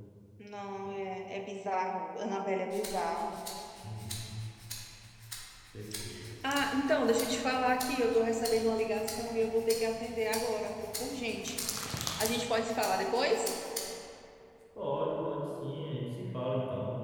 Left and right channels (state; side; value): identical; both; correlation 1.00